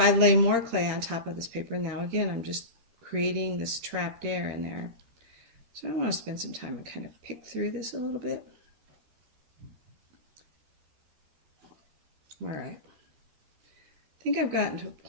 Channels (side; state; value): left; late; 13 ms